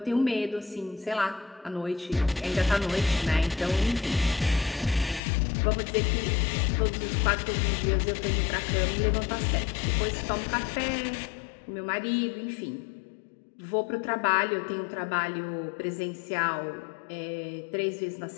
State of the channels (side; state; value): right; drops out; at 5.2 s